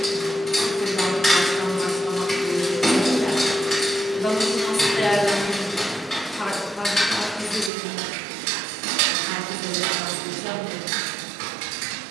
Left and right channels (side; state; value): left; drops out; at 7.7 s